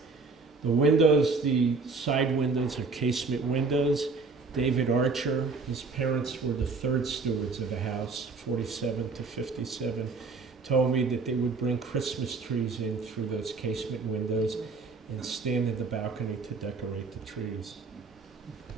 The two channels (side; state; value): left; quieter; 4.3 dB